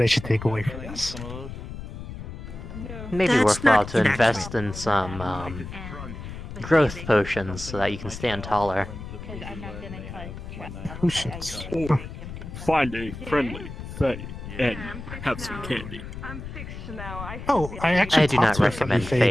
I should take away from this. Maybe That's worthwhile not to invest in some growth potions so that you can stand taller. Potions. Or find a friendly Fae and have some candy. Oh, I actually I do talked not to a friendly recommend Fae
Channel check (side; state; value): left; noise; rumble, 10 dB below the sound